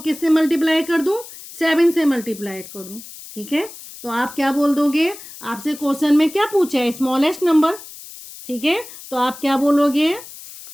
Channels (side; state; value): left; noise; hiss, 16 dB below the sound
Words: किससे मल्टीप्लाई कर दूं, 7 से मल्टीप्लाई कर दूं। ठीक है, तो आप क्या बोल दोगे, आपसे क्वेश्चन में क्या पूछा है, स्मॉलेस्ट नंबर। ठीक है, तो आप क्या बोलोगे,